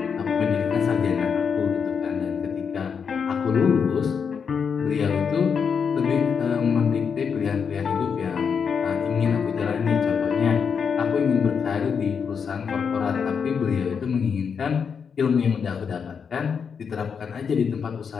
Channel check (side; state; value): right; quieter; 6.4 dB